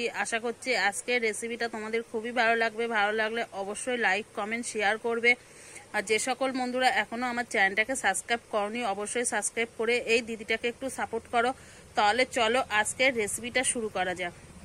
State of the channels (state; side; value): identical; both; correlation 1.00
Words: আশা করছি আজকের রেসিপিটা তোমাদের খুবই ভালো লাগবে। ভালো লাগলে অবশ্যই লাইক কমেন্ট শেয়ার করবে। আর যে সকল বন্ধুরা এখনও আমার চ্যানেলটাকে সাবস্ক্রাইব করনি অবশ্যই সাবস্ক্রাইব করে এই দিদিটাকে একটু সাপোর্ট করো। তাহলে চলো আজকের রেসিপিটা শুরু করা যাক।